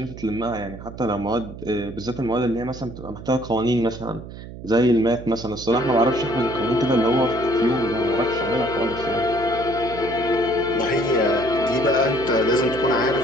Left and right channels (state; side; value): noise; right; hum, 13 dB below the sound